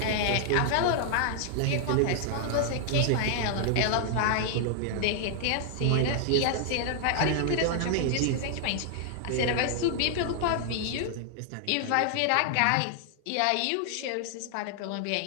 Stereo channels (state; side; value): different; both; correlation 0.00